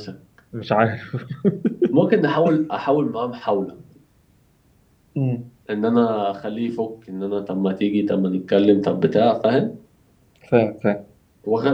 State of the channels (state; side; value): identical; both; correlation 1.00